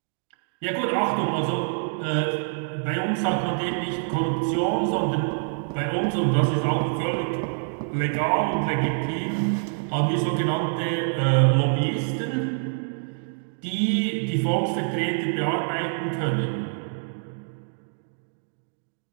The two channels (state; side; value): silent; left; digital silence